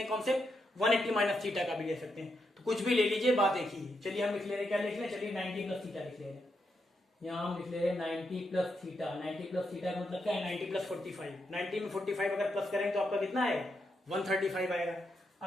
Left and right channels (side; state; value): both; normal; correlation 0.82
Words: कॉन्सेप्ट, 180 माइनस थीटा का भी ले सकते हैं, तो कुछ भी ले लीजिए, बात एक ही है। चलिए हम लिख ले रहे हैं, क्या लिख रहे हैं, चलिए 90 प्लस थीटा लिख ले रहे हैं। यहाँ हम लिख ले रहे हैं 90 प्लस थीटा, 90 प्लस थीटा का मतलब क्या है, 90 प्लस 45, 90 में 45 अगर प्लस करेंगे तो आपका कितना आएगा, 135 आएगा।